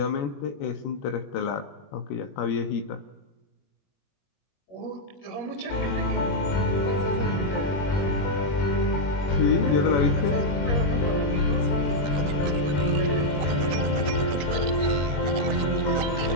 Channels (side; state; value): right; late; 21 ms